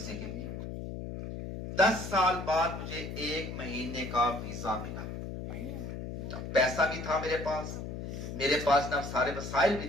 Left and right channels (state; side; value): noise; left; hum, 7 dB below the sound